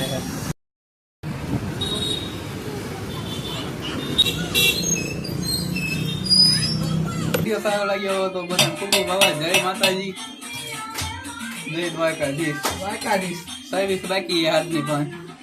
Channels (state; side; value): identical; both; correlation 1.00